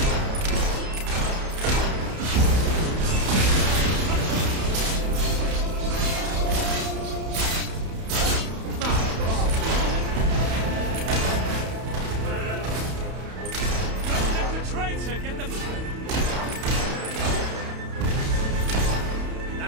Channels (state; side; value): late; left; 31 ms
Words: Traitor, get them.